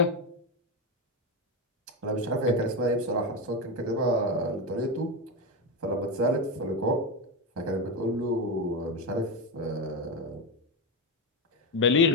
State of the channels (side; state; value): both; normal; correlation 0.11